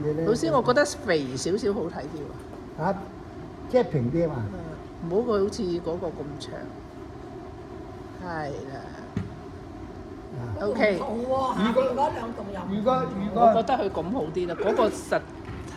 咧。老師，我覺得肥少少好睇啲喎。嚇，即係平啲啊嘛。唔好佢好似嗰個咁長。係啦。OK。如果嗰兩棟又如果我覺得佢咁好啲啦，嗰個實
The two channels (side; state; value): both; identical; correlation 1.00